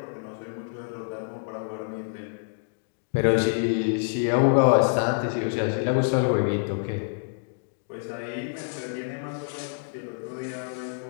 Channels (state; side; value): silent; right; digital silence